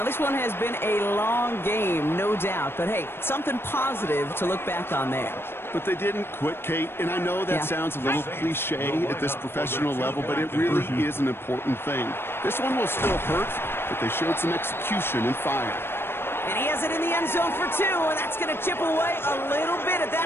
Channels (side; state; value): right; late; 0.11 ms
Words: this one has been a long game, no doubt. But, hey, something positive to look back on there. But they didn't quit, Kate, and I know that sounds a little cliche at this professional level, but it really is an important thing. This one will still hurt, but they showed some execution and fire. And he has it in the end zone for 2, and that's going to chip away a little bit at